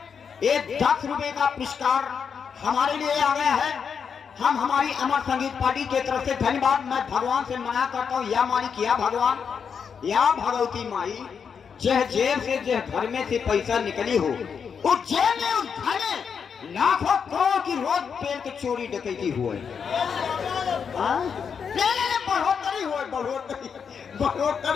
एक 10 रुपए का पुरस्कार हमारे लिए आ गया है। हम हमारी अमर संगीत पार्टी के तरफ से धन्यवाद मैं भगवान से मना करता हूँ। या मालिक या भगवान या भगवती माई, जह जेब से जह घर में से पैसा निकली हो, उस जेब में उस घर में लाखों करोड़ की रोज पेड़ के चोरी डकैती हुए। बढ़ोतरी हो,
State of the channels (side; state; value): right; quieter; 6.6 dB